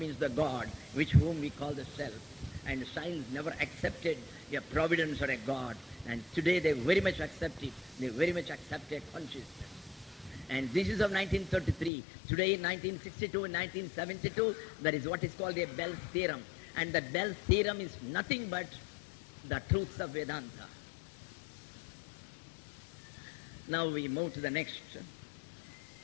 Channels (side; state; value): right; drops out; at 11.9 s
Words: the God, which whom we call the self. And science never accepted a providence or a God. And today they very much accept it. They very much accept a consciousness. And this is of 1933. Today in 1962 and 1972, there is what is called a Bell's theorem. And the Bell's theorem is nothing but the truths of Vedanta. Now we move to the next.